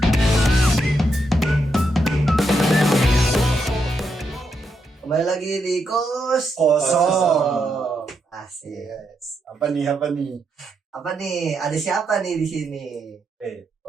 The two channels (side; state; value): both; normal; correlation 0.81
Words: Kembali lagi di kos Kosong. Asik. Yes. Apa nih? Apa nih? Ada siapa nih di sini?